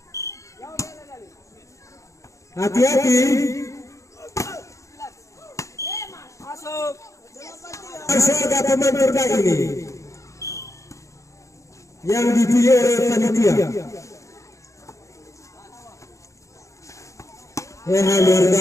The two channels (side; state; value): right; late; 0.15 ms